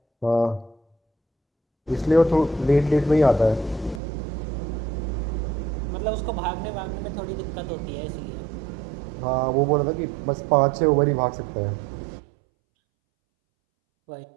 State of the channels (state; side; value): drops out; left; at 4.0 s